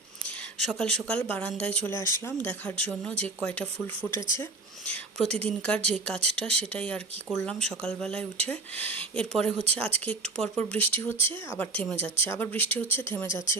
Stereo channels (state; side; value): quieter; left; 3.6 dB